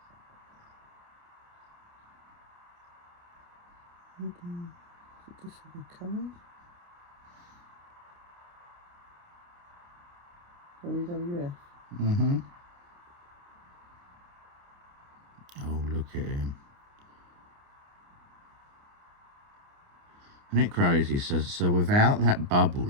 This is a card. WWF. Oh, look at him. Isn't it crazy? So without that bubble,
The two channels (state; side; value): late; left; 29 ms